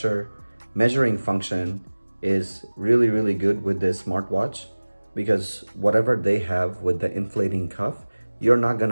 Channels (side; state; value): both; inverted; correlation -1.00